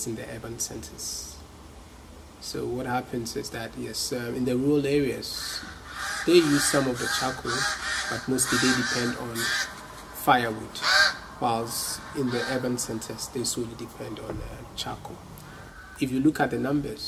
in the urban centers. So what happens is that, yes, in the rural areas, they use some of the charcoal, but mostly they depend on firewood, whilst in the urban centers, they solely depend on charcoal. If you look at the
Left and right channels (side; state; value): both; identical; correlation 1.00